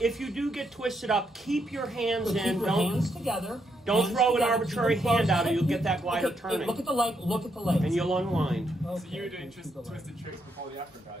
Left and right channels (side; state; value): both; normal; correlation 0.78